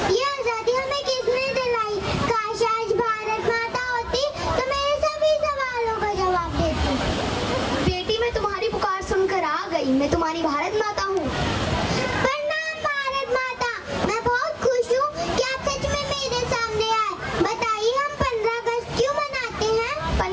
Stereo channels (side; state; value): both; identical; correlation 1.00